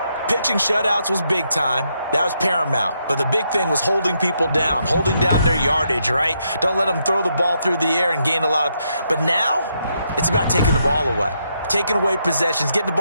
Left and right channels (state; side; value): inverted; both; correlation -0.78